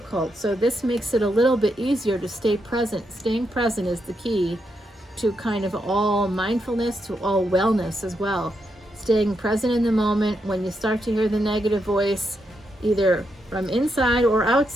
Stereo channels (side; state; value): both; normal; correlation 0.82